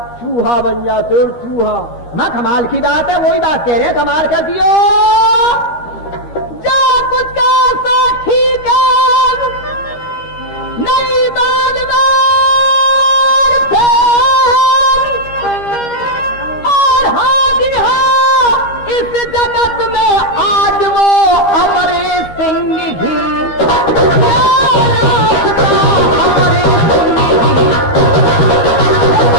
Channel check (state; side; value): late; right; 13 ms